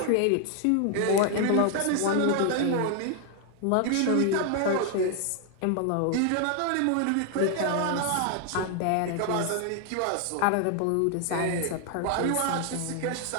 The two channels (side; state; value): both; different; correlation 0.00